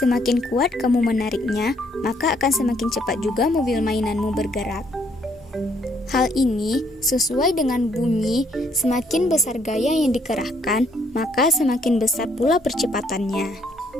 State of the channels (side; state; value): both; normal; correlation 0.68